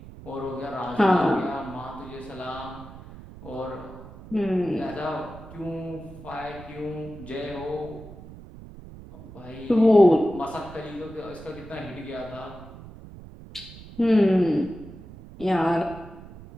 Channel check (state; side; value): noise; right; rumble, 16 dB below the sound